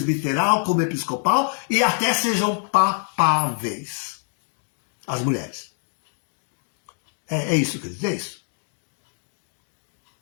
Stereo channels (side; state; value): right; silent; 62 dB below the other